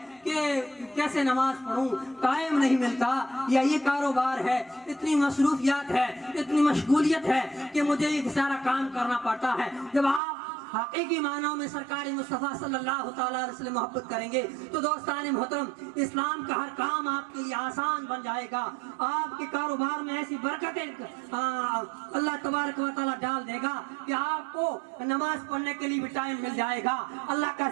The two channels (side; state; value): left; drops out; at 10.2 s